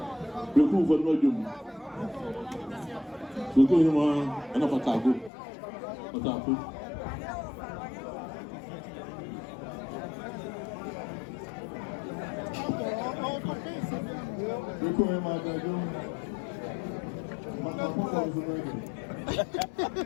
pẹ̀kú fún ọdún ọjọ́ mu pẹ̀kú yìí mọ ẹ̀nà pàtàkó pàtàkó. pẹ̀kú yìí máa dájú máa kó kọ́ ọ̀sùn náà yìí.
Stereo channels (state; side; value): drops out; right; at 5.3 s